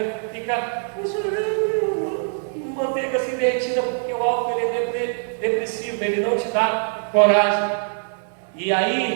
fica chorando, manteiga assim derretida, porque o álcool ele é depressivo, ele não te dá coragem. E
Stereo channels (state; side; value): silent; left; digital silence